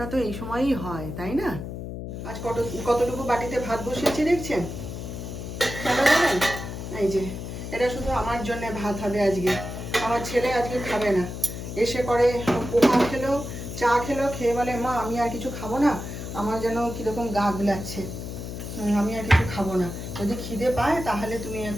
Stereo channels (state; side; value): noise; left; hum, 7 dB below the sound